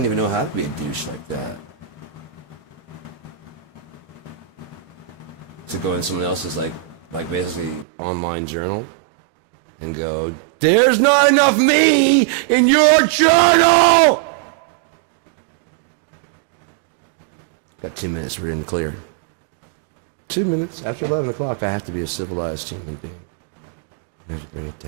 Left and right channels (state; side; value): drops out; left; at 7.9 s